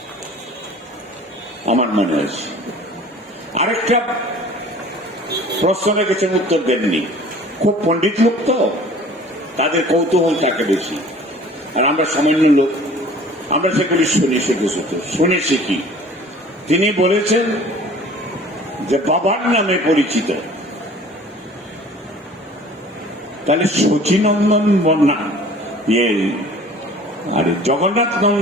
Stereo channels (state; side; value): normal; both; correlation 0.47